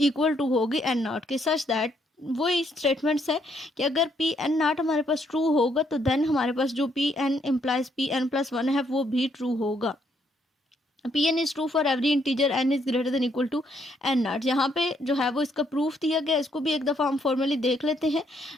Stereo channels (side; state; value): both; normal; correlation 0.72